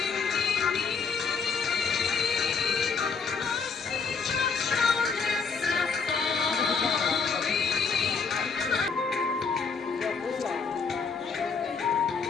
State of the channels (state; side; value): quieter; right; 5.3 dB